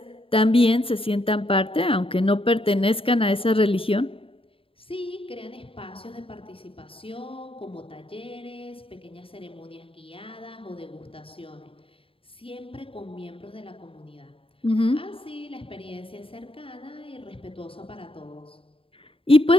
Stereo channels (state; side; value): late; right; 0.27 ms